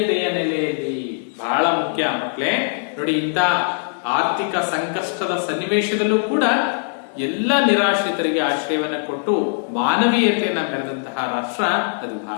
ನೆಲೆಯಲ್ಲಿ. ಬಹಳ ಮುಖ್ಯ ಮಕ್ಕಳೇ ನೋಡಿ, ಇಂಥ ಆರ್ಥಿಕ ಸಂಕಷ್ಟದ ಸನ್ನಿವೇಶದಲ್ಲೂ ಕೂಡ ಎಲ್ಲ ನಿರಾಶ್ರಿತರಿಗೆ ಆಶ್ರಯವನ್ನ ಕೊಟ್ಟು ಮಾನವೀಯತೆಯನ್ನ ಮೆರೆದಂತಹ ರಾಷ್ಟ್ರ ಅದು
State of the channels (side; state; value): right; silent; digital silence